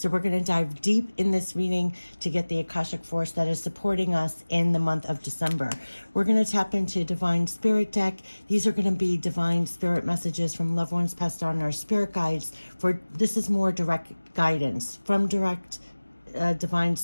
we're going to dive deep in this reading to get the Akashic Force that is supporting us in the month of December. We're going to tap into Divine Spirit deck. These are going to be divine spirit messages from loved ones passed on, our spirit guides. This is more direct guidance from direct divine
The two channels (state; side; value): inverted; both; correlation -1.00